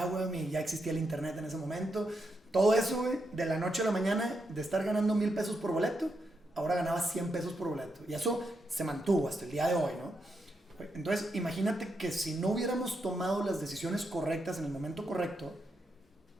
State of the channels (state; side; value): normal; both; correlation 0.83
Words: ya existía el internet en ese momento. Todo eso, güey, de la noche a la mañana, de estar ganando 1,000 pesos por boleto, ahora ganaba 100 pesos por boleto. Y eso se mantuvo hasta el día de hoy, ¿no? Entonces, imagínate que si no hubiéramos tomado las decisiones correctas en el momento correcto,